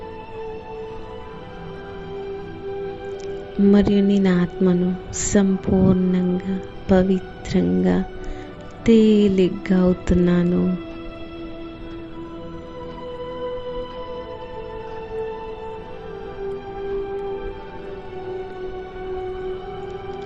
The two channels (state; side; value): identical; both; correlation 1.00